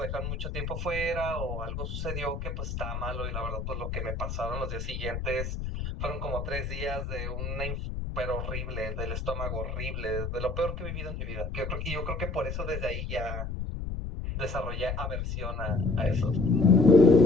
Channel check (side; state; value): left; noise; rumble, 4 dB below the sound